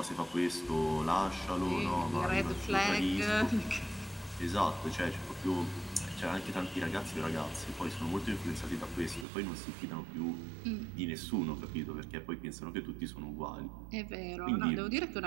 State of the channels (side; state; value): left; drops out; at 9.2 s